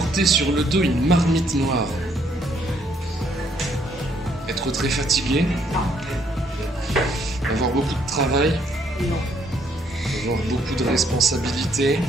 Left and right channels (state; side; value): normal; both; correlation 0.68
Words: sur le dos une marmite noire. Être très fatigué. Avoir beaucoup de travail. Non. Avoir beaucoup de responsabilités.